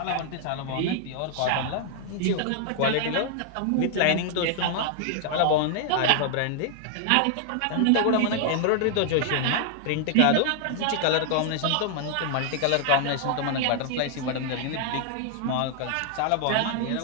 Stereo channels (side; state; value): both; different; correlation 0.00